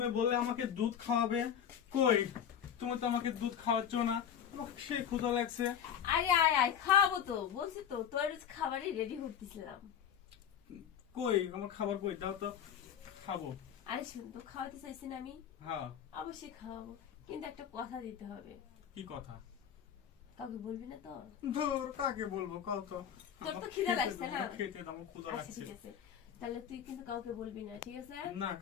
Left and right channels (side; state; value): right; quieter; 8.9 dB